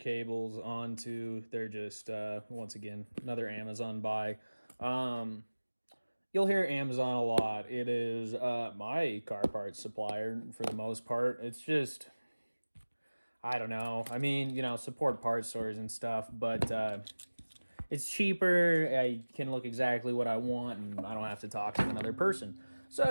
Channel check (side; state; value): both; inverted; correlation -1.00